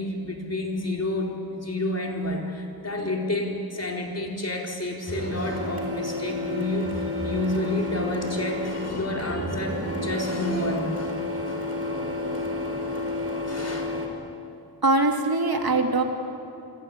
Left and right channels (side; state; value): both; normal; correlation 0.06